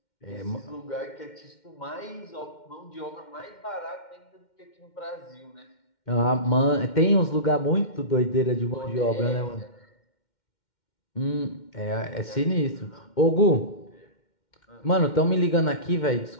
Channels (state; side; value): late; right; 2.1 ms